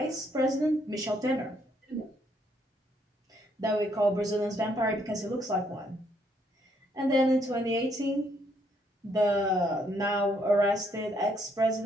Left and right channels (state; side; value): normal; both; correlation 0.71